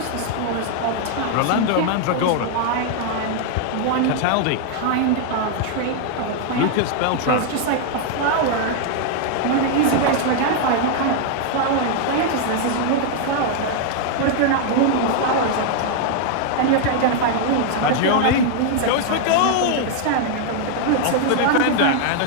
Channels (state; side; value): different; both; correlation 0.00